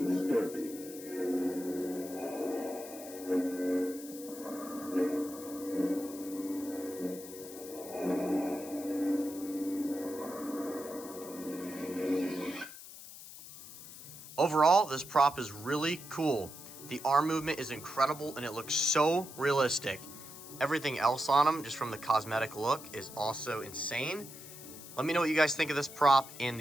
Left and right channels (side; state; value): left; noise; hiss, 14 dB below the sound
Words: disturbing. Overall, this prop is really cool. The arm movement is incredible and it looks so realistic. Everything else on him, just from the cosmetic look, is also insane. Let me know what you guys think of this prop in